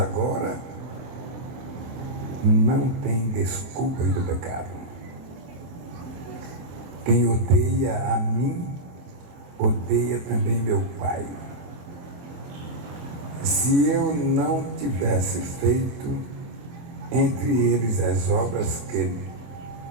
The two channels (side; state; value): left; late; 24 ms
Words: não tem desculpas do pecado. Quem odeia a mim, odeia também meu Pai. Se eu não tivesse feito entre eles as obras que